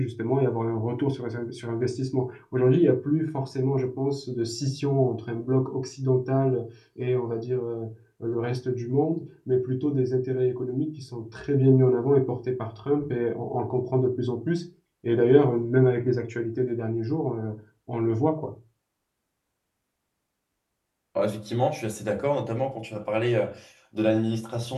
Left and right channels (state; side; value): identical; both; correlation 1.00